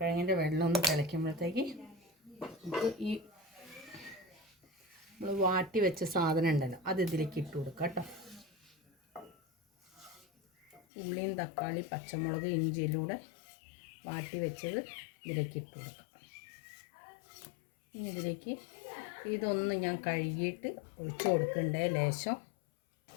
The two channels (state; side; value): drops out; right; at 10.8 s